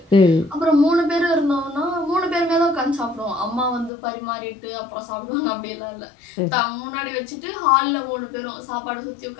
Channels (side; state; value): right; drops out; at 3.9 s